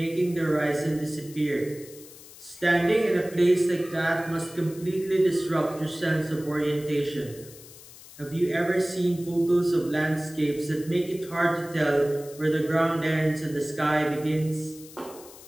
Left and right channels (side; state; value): left; noise; hiss, 19 dB below the sound